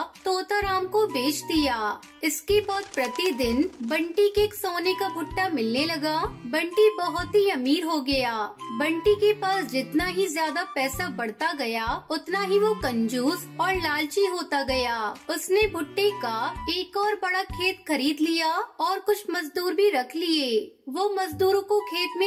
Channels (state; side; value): identical; both; correlation 1.00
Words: तोताराम को बेच दिया। इसके बाद प्रतिदिन बंटी के एक सोने का भुट्टा मिलने लगा। बंटी बहुत ही अमीर हो गया। बंटी के पास जितना ही ज्यादा पैसा बढ़ता गया उतना ही वो कंजूस और लालची होता गया। उसने भुट्टे का एक और बड़ा खेत खरीद लिया और कुछ मजदूर भी रख लिए। वो मजदूरों को खेत